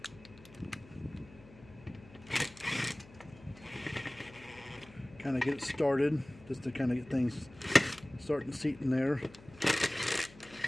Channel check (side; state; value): left; noise; hum, 21 dB below the sound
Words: Kind of get it started, just to kind of get things starting to seat in there.